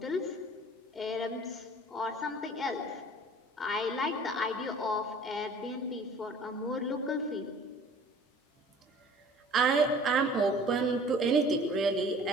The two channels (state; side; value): normal; both; correlation 0.49